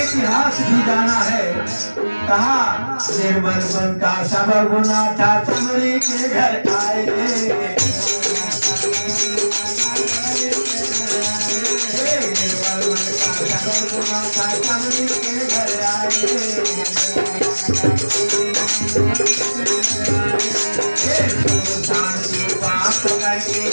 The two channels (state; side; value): inverted; both; correlation -1.00